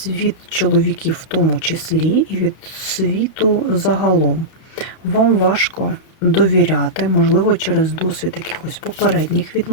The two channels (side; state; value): right; late; 31 ms